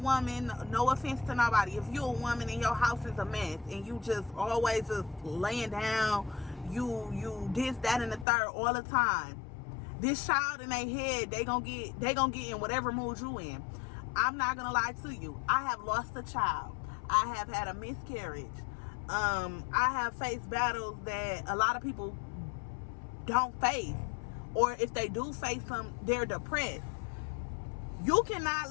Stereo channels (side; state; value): right; drops out; at 8.2 s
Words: no offense to nobody, if you a woman and your house is a mess and you just always just laying down, you this, that, and the third all the time, this child in their head, they gonna get in whatever mood you in. I'm not gonna lie to you. I have lost a child. I have had a miscarriage. I have faced battles that a lot of people don't face, or if they do face them, they're depressed. You cannot